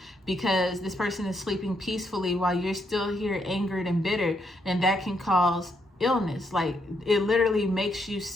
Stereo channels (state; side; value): normal; both; correlation 0.76